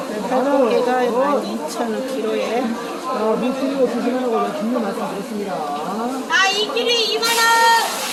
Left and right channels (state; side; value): identical; both; correlation 1.00